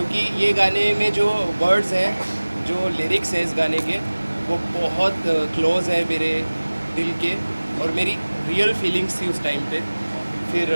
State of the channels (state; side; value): inverted; both; correlation -1.00